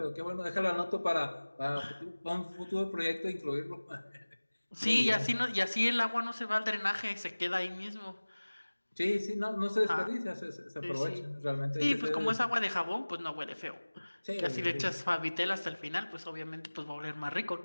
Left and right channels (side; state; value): both; inverted; correlation -1.00